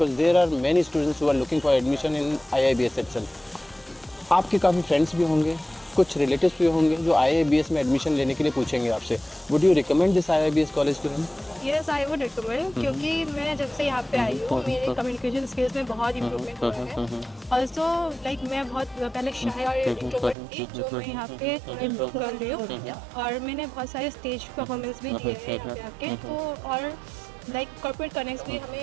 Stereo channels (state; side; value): drops out; left; at 20.4 s